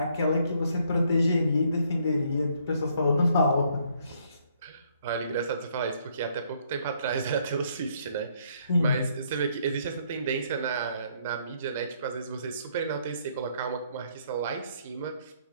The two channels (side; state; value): both; inverted; correlation -0.68